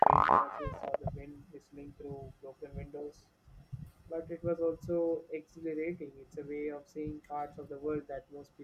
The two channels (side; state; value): both; identical; correlation 1.00